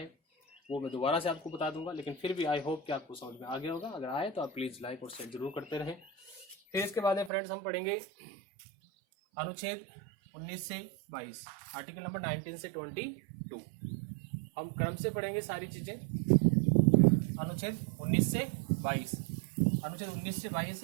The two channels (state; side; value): drops out; left; at 7.3 s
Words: वो मैं दोबारा से आपको बता दूंगा। लेकिन फिर भी आई होप कि आपको समझ में आ गया होगा। अगर आए तो आप प्लीज़ लाइक और शेयर जरूर करते रहें। फिर इसके बाद में फ्रेंड्स हम पढ़ेंगे अनुच्छेद 19 से 22, आर्टिकल नंबर 19 से 22। हम क्रम से पढ़ेंगे सारी चीज़ें। अनुच्छेद 19 से 22, अनुच्छेद 19 से 22